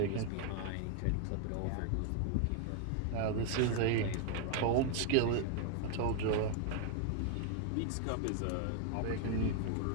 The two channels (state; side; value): different; both; correlation 0.00